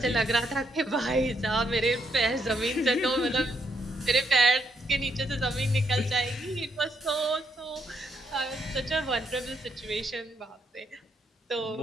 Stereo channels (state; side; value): normal; both; correlation 0.76